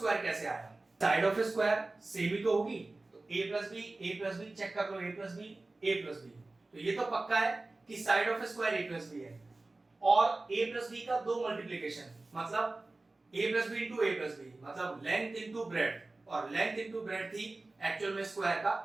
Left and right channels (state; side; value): quieter; left; 3.1 dB